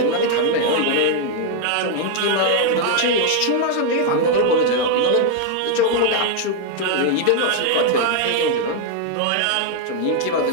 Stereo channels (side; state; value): both; different; correlation 0.00